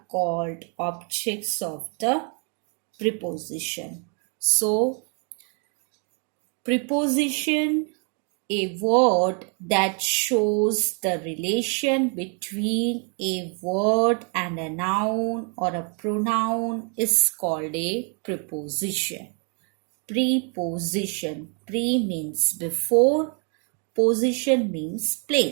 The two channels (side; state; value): left; quieter; 38.4 dB